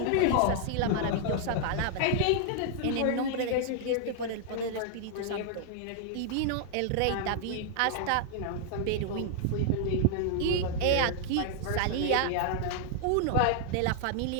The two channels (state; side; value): different; both; correlation -0.01